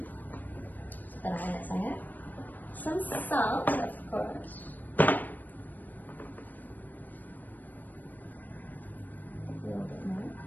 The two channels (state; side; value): late; right; 0.086 ms